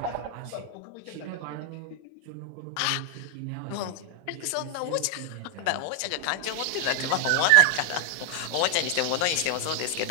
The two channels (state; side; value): different; both; correlation 0.01